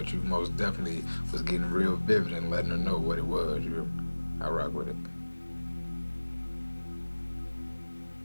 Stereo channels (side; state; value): both; inverted; correlation -1.00